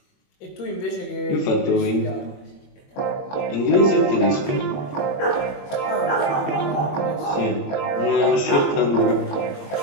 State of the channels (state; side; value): late; right; 21 ms